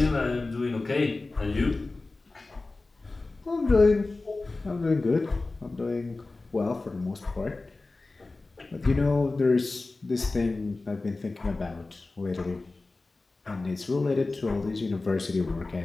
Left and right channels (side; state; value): right; quieter; 3.4 dB